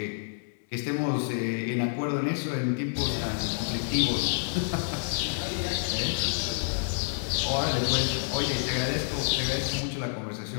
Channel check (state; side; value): silent; right; digital silence